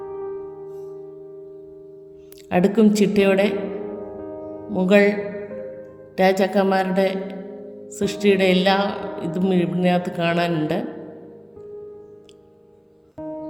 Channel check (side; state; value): both; identical; correlation 1.00